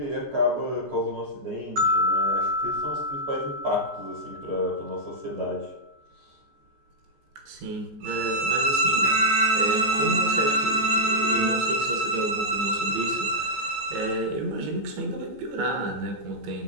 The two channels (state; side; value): late; left; 14 ms